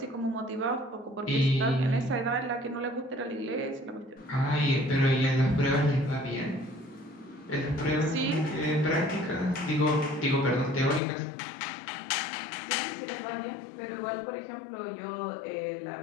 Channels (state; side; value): drops out; right; at 11.0 s